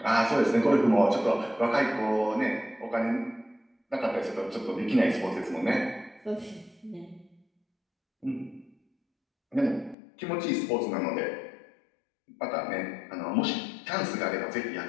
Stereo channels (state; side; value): drops out; right; at 10.0 s